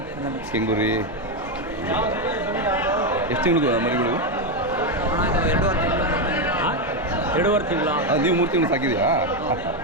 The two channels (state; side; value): normal; both; correlation 0.07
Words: ಕೆಂಗುರಿ ಎಷ್ಟು ತಿಂಗಳು ಮರಿಗಳು? 2.5 ತಿಂಗಳು. ನೀವು 3 ತಿಂಗಳು ಸಾಕಿದೆಯಾ?